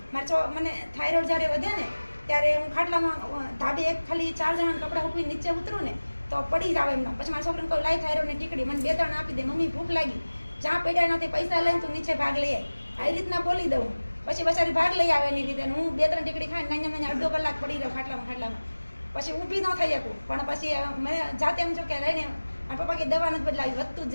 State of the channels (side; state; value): both; inverted; correlation -1.00